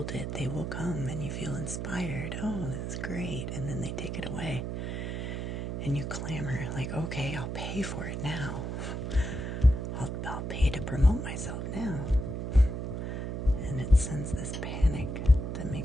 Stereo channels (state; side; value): noise; right; hum, 3 dB below the sound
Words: it, they will come, and you feel inspired. Oh, that's great. And then they take it away. And you clamor, like, okay, I'll pay for it now. I'll pay to promote myself now. And it sends this panic that